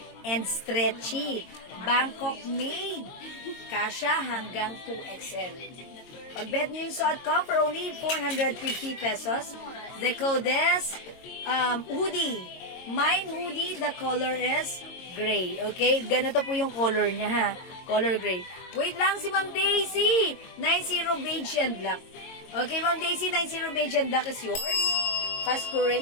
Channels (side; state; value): right; late; 22 ms